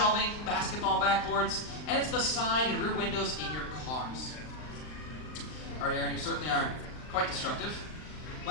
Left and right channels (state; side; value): late; right; 39 ms